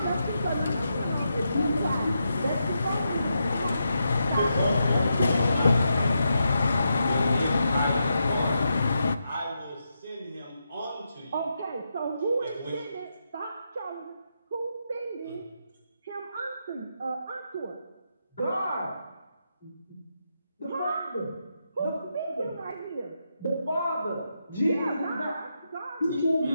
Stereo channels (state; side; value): inverted; both; correlation -0.84